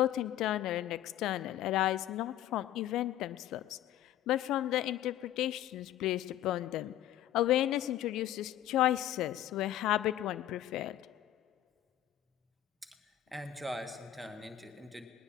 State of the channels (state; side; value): quieter; right; 12.5 dB